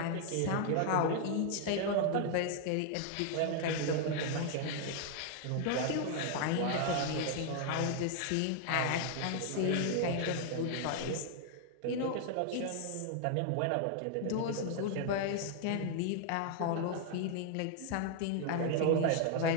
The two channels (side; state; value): both; different; correlation 0.00